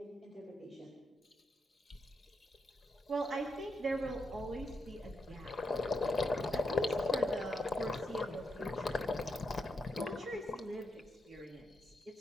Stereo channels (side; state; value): both; normal; correlation 0.83